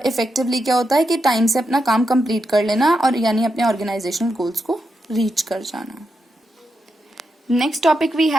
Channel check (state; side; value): normal; both; correlation 0.85